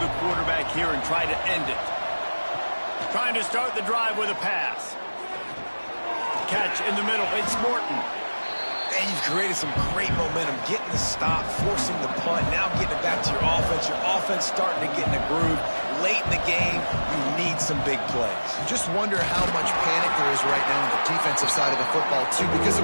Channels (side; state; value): both; inverted; correlation -1.00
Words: quarterback here and try to end it? Trying to start the drive with a pass. Catch in the middle. It's Morton. And you've created some great momentum, getting the stop, forcing the punt, now getting it back to your offense. Your offense starting to get in a groove. Late in the game, you need some big plays. Just wonder how much panic there is right now on the defensive side of the football, too, because